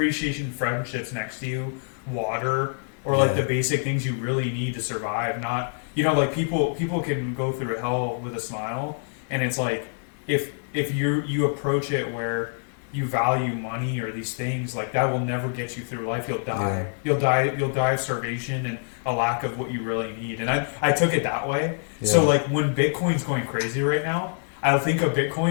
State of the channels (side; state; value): right; silent; 61 dB below the other